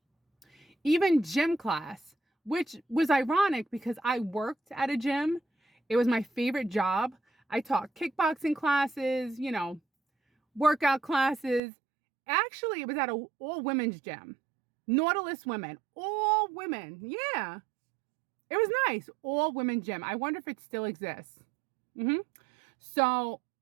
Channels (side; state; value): left; drops out; at 11.6 s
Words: Even gym class, which was ironic because I worked at a gym. It was my favorite job. I taught kickboxing classes, workout classes. Actually, it was at an all-women's gym. Nautilus Women. All women. Yeah. It was nice. All-women gym. I wonder if it still exists. So